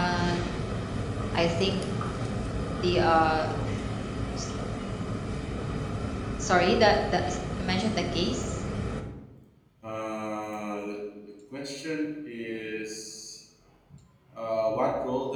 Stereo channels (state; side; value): identical; both; correlation 1.00